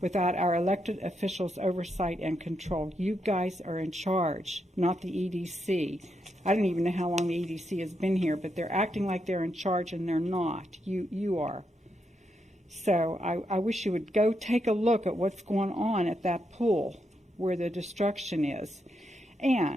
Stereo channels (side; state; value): both; normal; correlation 0.82